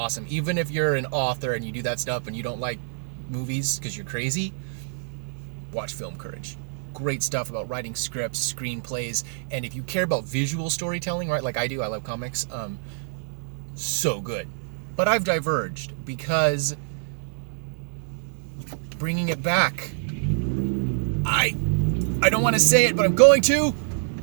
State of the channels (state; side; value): silent; left; 59 dB below the other